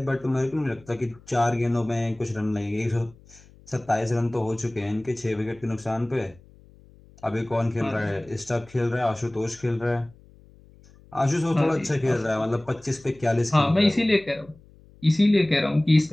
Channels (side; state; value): left; noise; hum, 25 dB below the sound